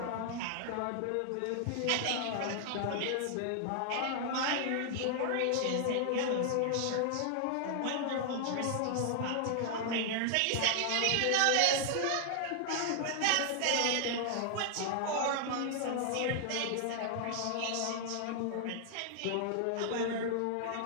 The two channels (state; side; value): different; both; correlation 0.00